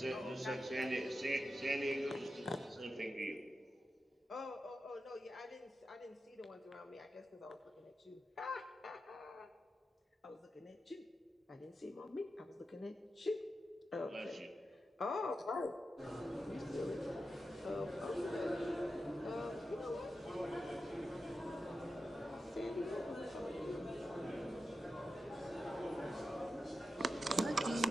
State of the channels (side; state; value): both; normal; correlation 0.90